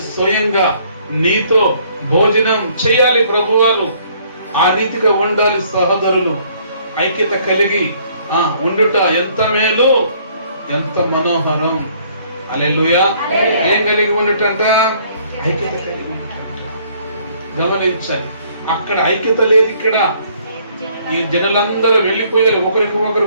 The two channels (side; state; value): both; inverted; correlation -0.62